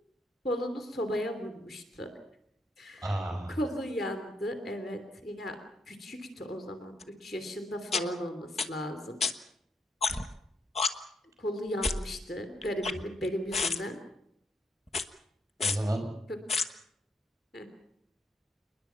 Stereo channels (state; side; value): normal; both; correlation 0.76